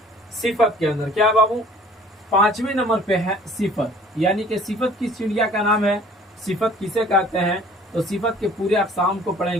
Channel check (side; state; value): both; normal; correlation 0.52